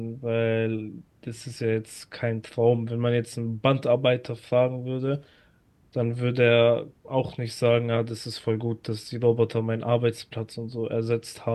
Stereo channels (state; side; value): identical; both; correlation 1.00